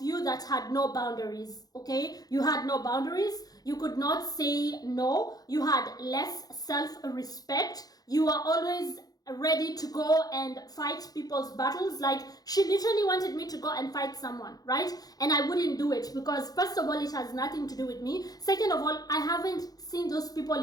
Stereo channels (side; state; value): right; late; 0.18 ms